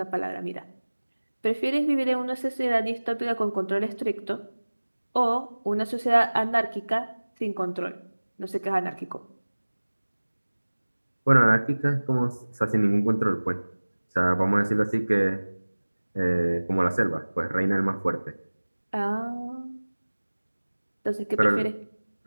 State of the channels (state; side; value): inverted; both; correlation -1.00